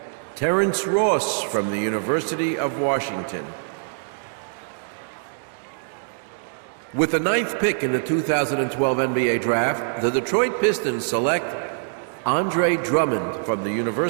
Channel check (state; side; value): silent; left; digital silence